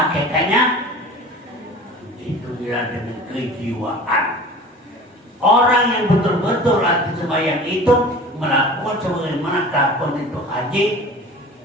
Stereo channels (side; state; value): both; normal; correlation 0.40